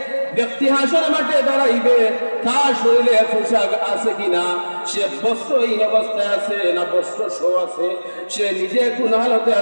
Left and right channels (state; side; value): inverted; both; correlation -1.00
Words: ব্যক্তি হাসরের মাঠে দাঁড়াইবে তার শরীরে পোশাক আছে কিনা, সে বস্ত্রহীন অবস্থায় আছে না বস্ত্র সহ আছে, সে নিজে কোন হালতে